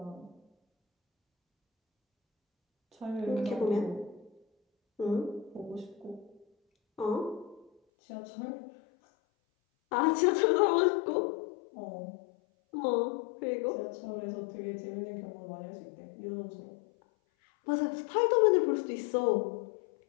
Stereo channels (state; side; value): drops out; right; at 7.7 s